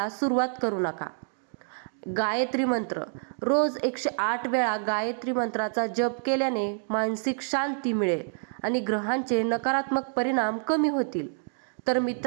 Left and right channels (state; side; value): silent; left; 60 dB below the other